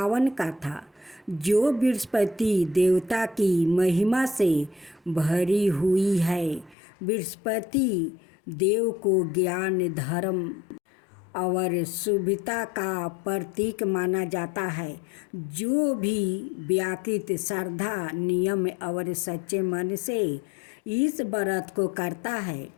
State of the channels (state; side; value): drops out; right; at 6.8 s